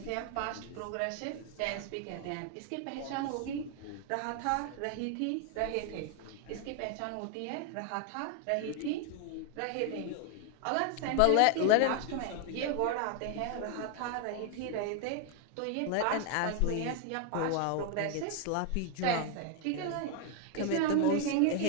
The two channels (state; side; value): different; both; correlation 0.00